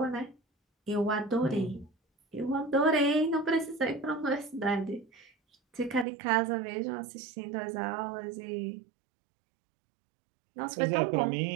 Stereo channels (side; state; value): left; drops out; at 6.1 s